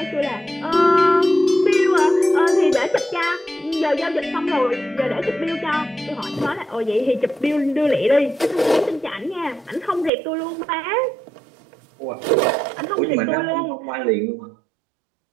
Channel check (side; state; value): left; drops out; at 10.1 s